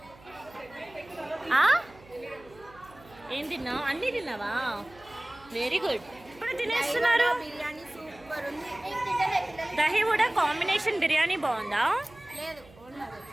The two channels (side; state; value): right; noise; hum, 24 dB below the sound